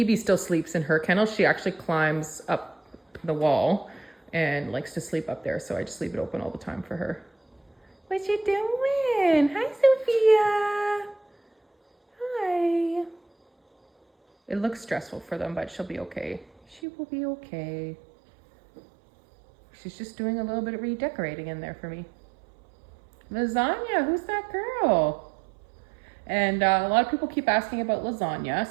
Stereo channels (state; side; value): drops out; left; at 16.8 s